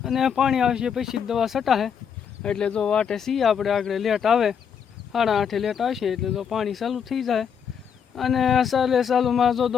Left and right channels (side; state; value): right; quieter; 7.4 dB